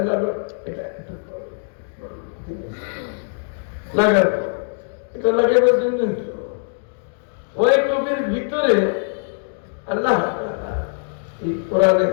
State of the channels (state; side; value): silent; right; digital silence